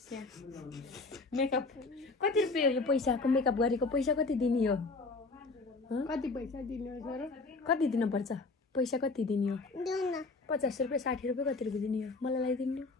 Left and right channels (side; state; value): right; quieter; 3.7 dB